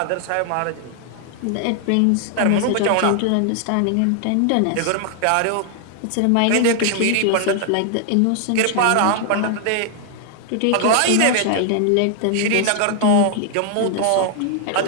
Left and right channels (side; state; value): both; different; correlation 0.00